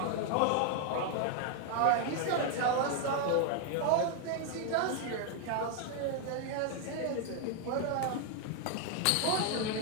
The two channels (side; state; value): both; different; correlation 0.00